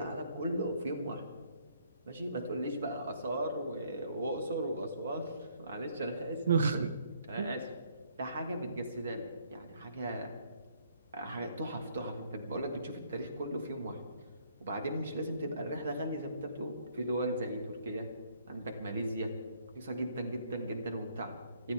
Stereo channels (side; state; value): both; inverted; correlation -0.65